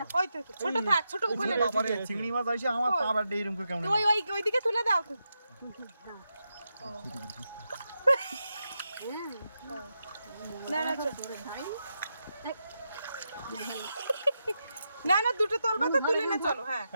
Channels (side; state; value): both; inverted; correlation -0.87